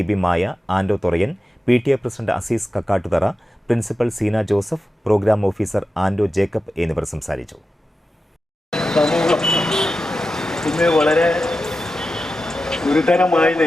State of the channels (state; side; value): normal; both; correlation 0.92